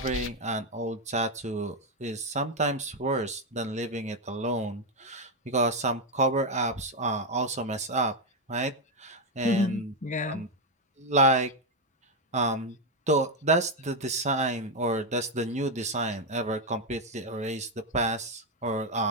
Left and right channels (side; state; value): both; normal; correlation 0.04